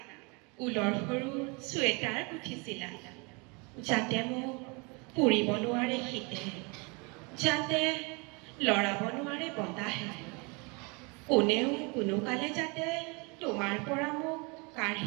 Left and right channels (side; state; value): left; quieter; 30.1 dB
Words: ঊলৰ সৰু চুৱেটাৰ গুঠিছিলা, যাতে মোক পুৰিব নোৱাৰে শীতে, যাতে লৰাব নোৱাৰে বতাহে, কোনেও কোনোকালে যাতে তোমাৰ পৰা মোক